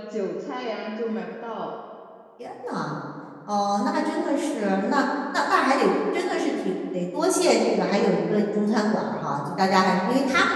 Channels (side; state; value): both; identical; correlation 1.00